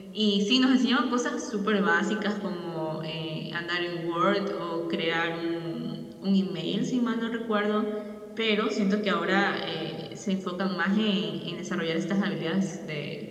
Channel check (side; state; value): both; identical; correlation 1.00